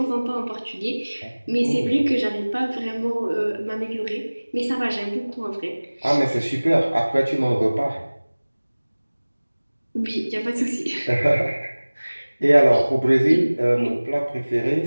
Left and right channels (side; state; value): both; inverted; correlation -1.00